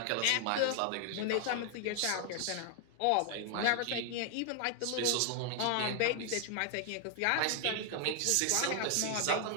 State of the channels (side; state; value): both; different; correlation 0.00